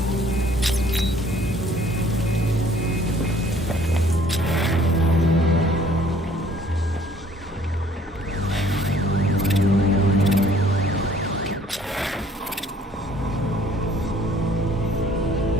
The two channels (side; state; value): both; normal; correlation 0.58